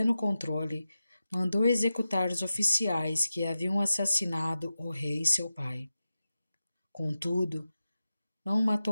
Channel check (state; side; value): inverted; both; correlation -0.92